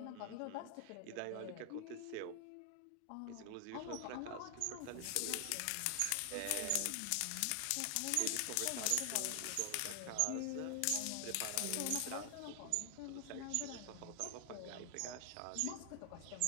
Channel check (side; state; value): both; different; correlation 0.00